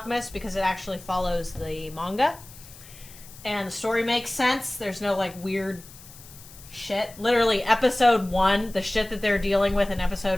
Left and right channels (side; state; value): left; noise; hiss, 19 dB below the sound